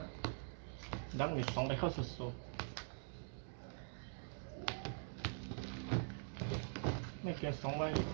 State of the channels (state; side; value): silent; left; digital silence